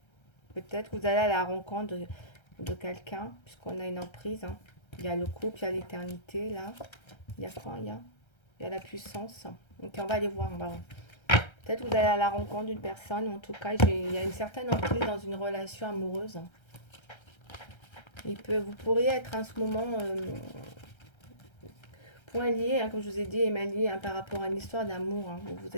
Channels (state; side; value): late; right; 1.3 ms